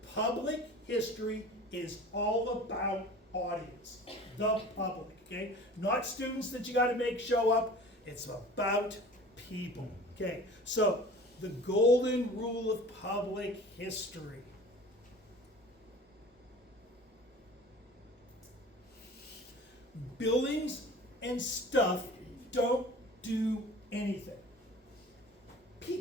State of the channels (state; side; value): normal; both; correlation 0.42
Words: Public history is all about audience, the public, okay? Not students that you gotta make show up, it's about people, okay? So, the golden rule of public history. Buildings and stuff don't do anything.